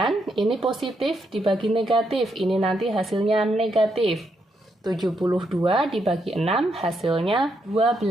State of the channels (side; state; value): both; normal; correlation 0.79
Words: ini positif dibagi negatif, ini nanti hasilnya negatif. 72 dibagi 6, hasilnya